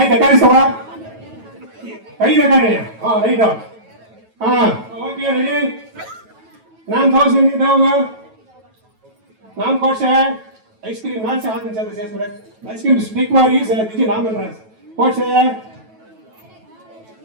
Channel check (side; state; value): left; late; 9.2 ms